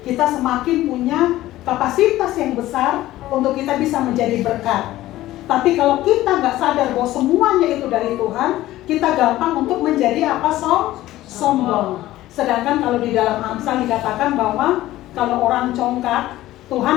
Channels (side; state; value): right; quieter; 15.6 dB